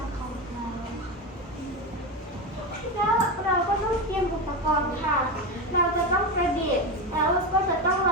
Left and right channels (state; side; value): normal; both; correlation 0.17